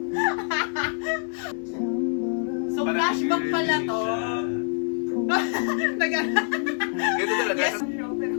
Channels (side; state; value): right; silent; 61 dB below the other